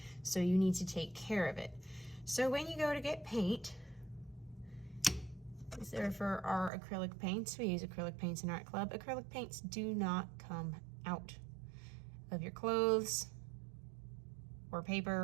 So you need to take care of it. So when you go to get paint, these are for our acrylic paints. We use acrylic paints in Art Club. Acrylic paints do not come out of your clothes or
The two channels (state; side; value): drops out; left; at 6.7 s